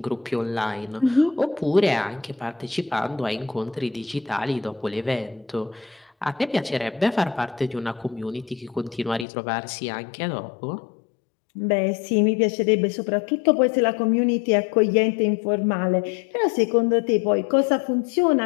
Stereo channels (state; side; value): drops out; right; at 9.2 s